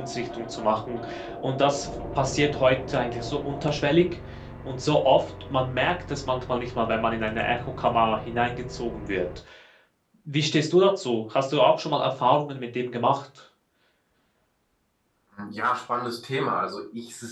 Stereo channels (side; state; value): both; identical; correlation 1.00